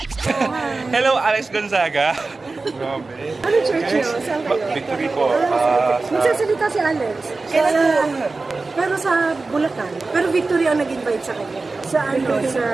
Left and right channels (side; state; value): left; quieter; 3.7 dB